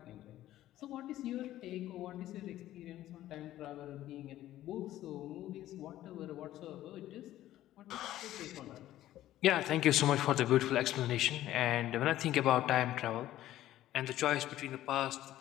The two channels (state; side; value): quieter; right; 13.9 dB